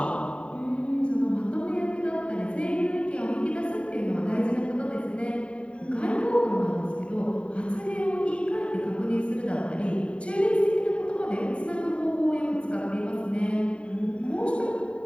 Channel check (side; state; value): right; late; 0.060 ms